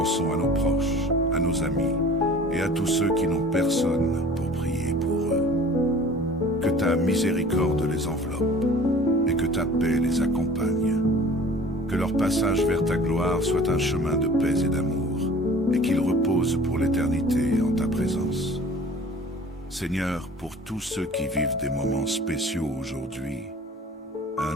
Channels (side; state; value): both; normal; correlation 0.45